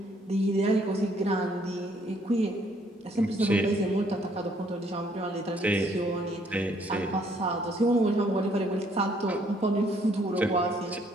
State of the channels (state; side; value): normal; both; correlation 0.65